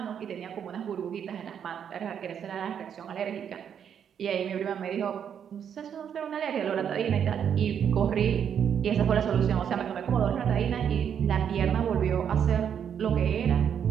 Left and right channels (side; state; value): left; quieter; 8.3 dB